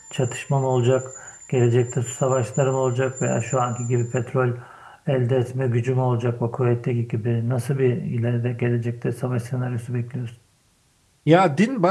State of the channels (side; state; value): both; identical; correlation 1.00